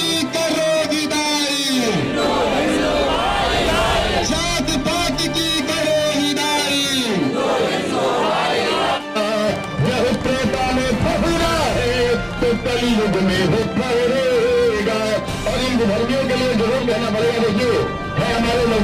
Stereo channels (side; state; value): both; identical; correlation 1.00